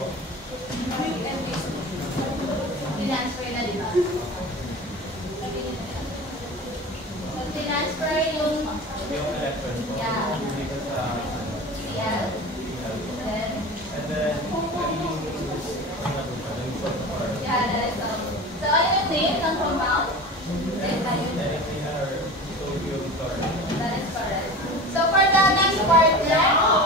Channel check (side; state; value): both; normal; correlation 0.33